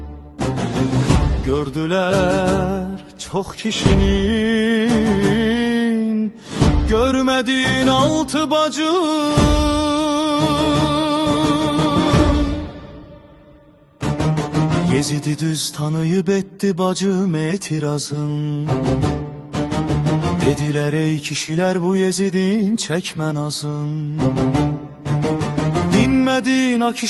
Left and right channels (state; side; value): identical; both; correlation 1.00